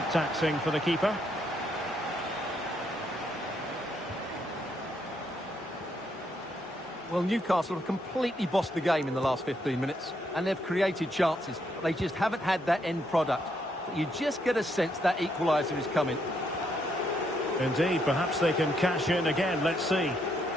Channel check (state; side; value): normal; both; correlation 0.75